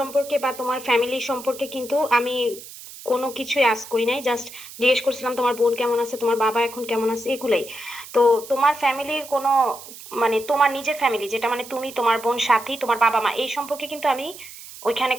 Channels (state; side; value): noise; right; hiss, 15 dB below the sound